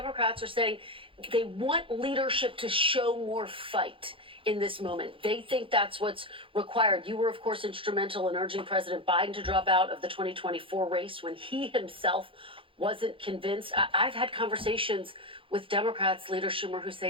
are saying they want leadership to show more fight in this moment. They think that's what's required. You were, of course, instrumental in urging President Biden to drop out of the 2024 race when he himself wasn't convinced. I've had conversations with Democrats, Leader Schumer, who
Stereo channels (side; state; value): left; late; 0.25 ms